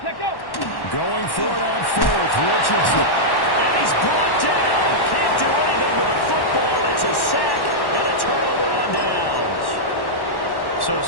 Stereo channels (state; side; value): late; right; 1.1 ms